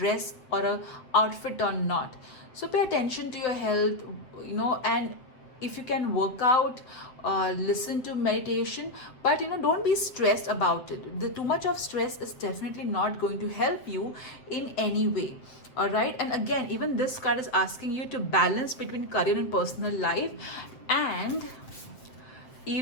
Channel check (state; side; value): late; right; 7.7 ms